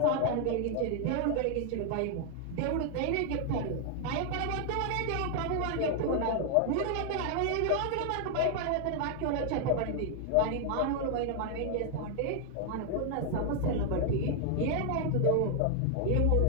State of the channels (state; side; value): different; both; correlation 0.00